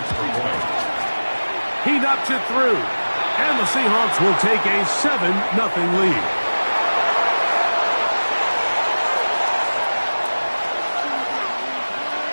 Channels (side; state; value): both; inverted; correlation -1.00